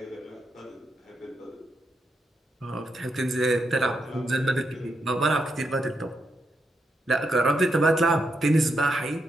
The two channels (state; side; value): normal; both; correlation 0.82